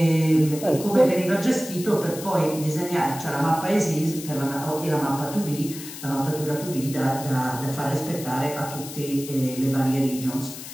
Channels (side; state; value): left; noise; hiss, 12 dB below the sound